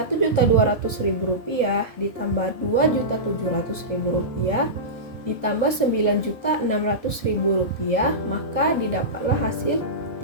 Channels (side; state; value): right; late; 1.8 ms